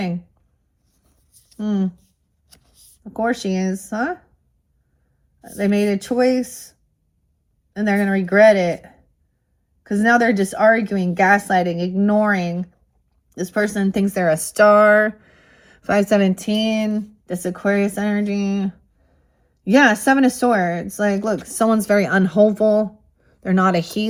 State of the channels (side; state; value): both; identical; correlation 1.00